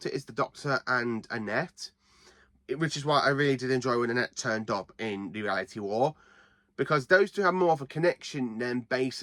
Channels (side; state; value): both; identical; correlation 1.00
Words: it is the Doctor and Annette, which is why I really did enjoy when Annette turned up in the Reality War, because those two have more of a connection than